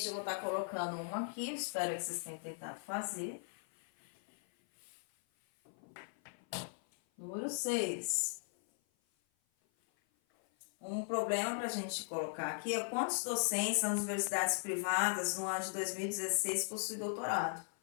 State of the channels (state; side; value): silent; right; 52 dB below the other